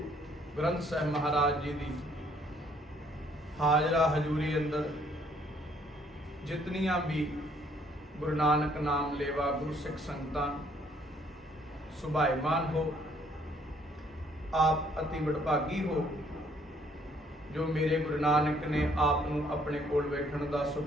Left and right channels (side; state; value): both; normal; correlation 0.64